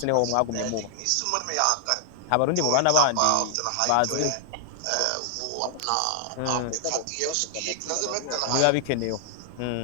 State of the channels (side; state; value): both; different; correlation 0.00